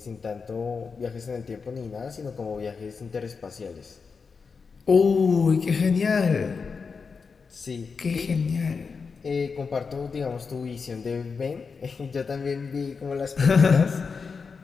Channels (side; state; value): right; quieter; 5.2 dB